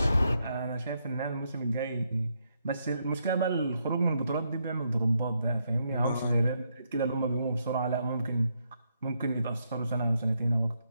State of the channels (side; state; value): both; inverted; correlation -0.78